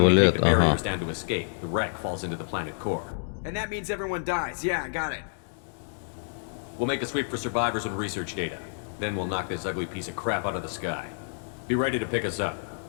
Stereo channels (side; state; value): right; silent; digital silence